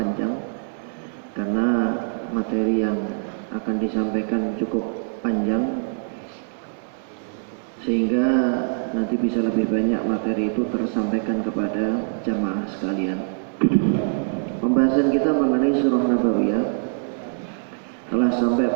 karena materi yang akan disampaikan cukup panjang, sehingga nanti bisa lebih banyak materi itu tersampaikan kepada jamaah sekalian. Pembahasan kita mengenai Surah Nabawiyah telah sampai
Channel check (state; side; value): silent; left; digital silence